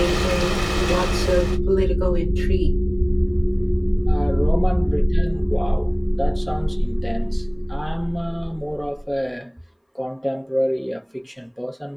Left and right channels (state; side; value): identical; both; correlation 1.00